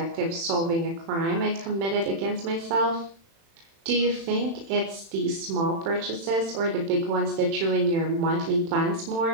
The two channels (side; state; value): left; late; 36 ms